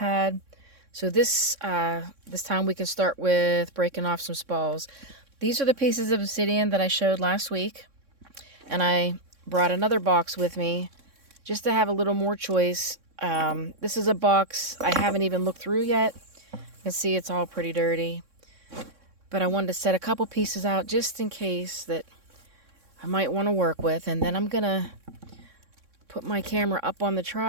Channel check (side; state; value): left; late; 3.6 ms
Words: So this time we can start with breaking off some spalls. These are the pieces of obsidian that I showed last week. And I brought another box with me just to have a little more choice. This is a box I haven't even looked through yet. You can see it's all pretty dirty. But I wanted to set a couple pieces out just in case that I might want to work with. And then I'm going to put my camera up on the